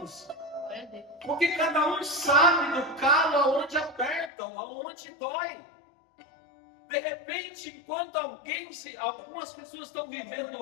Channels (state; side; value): drops out; right; at 4.3 s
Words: Porque cada um sabe do calo aonde aperta, aonde dói. De repente, enquanto algumas pessoas estão vivendo